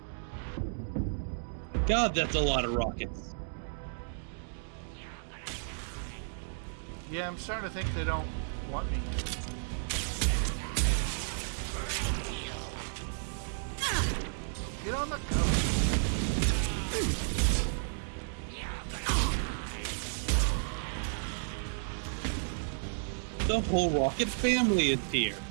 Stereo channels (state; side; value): silent; left; digital silence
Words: God, that's a lot of rockets. Yeah, I'm starting to think they don't want me. Get on the cover. The whole Rocket family is here.